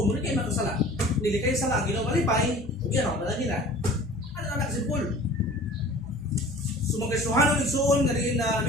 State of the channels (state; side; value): normal; both; correlation 0.44